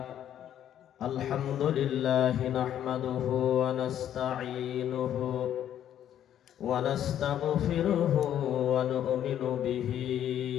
لله نحمده ونستعينه ونستغفره ونؤمن به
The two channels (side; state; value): right; quieter; 10.6 dB